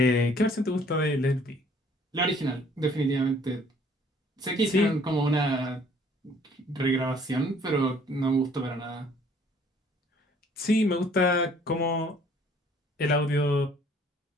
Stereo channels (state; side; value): normal; both; correlation 0.58